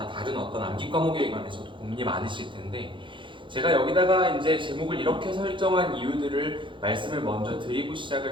다른 어떤 암기 과목에 관해서도 고민이 많으실 텐데, 제가 여기다가 이제 제목을 이렇게 설정한 이유들을 말씀을 먼저 드리고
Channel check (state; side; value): late; left; 0.24 ms